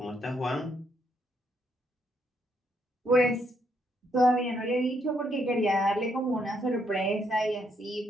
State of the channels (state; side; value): normal; both; correlation 0.74